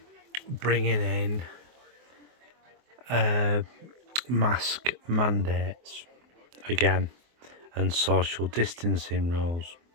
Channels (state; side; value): late; left; 24 ms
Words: bringing in mask mandates again and social distancing rules.